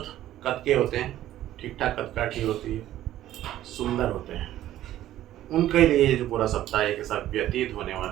कद के होते हैं, ठीक ठाक कदकाठी होती है, सुंदर होते हैं। उनके लिए जो पूरा सप्ताह एक साथ व्यतीत होने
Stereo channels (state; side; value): quieter; left; 13.3 dB